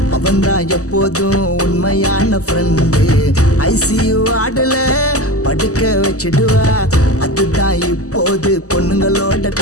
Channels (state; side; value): late; right; 0.66 ms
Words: அவன்தான் எப்போதும் உண்மையான ஃப்ரெண்டு ஐசியூ ஆடல படுக்க வச்சிடுவா அதுதான் இப்போது பொண்ணுங்களோட